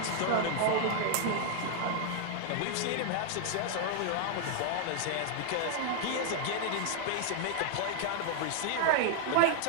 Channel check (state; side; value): different; both; correlation 0.00